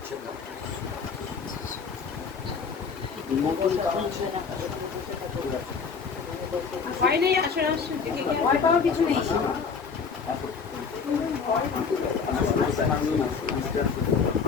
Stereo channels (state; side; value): quieter; right; 5.6 dB